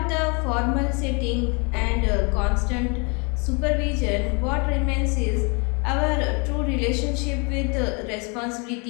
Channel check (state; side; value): quieter; right; 33.2 dB